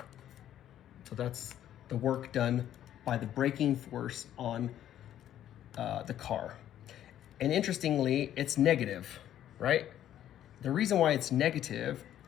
So that's the work done by the braking force on the car. And interestingly, it's negative, right? The reason why it's negative,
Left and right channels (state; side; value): quieter; right; 11.4 dB